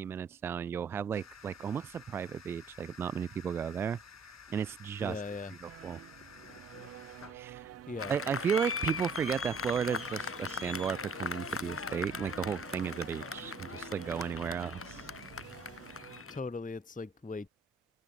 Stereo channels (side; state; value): left; quieter; 4.2 dB